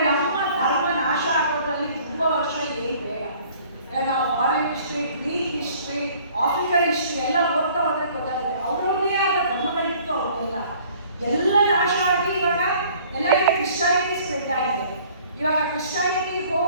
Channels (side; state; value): both; inverted; correlation -0.54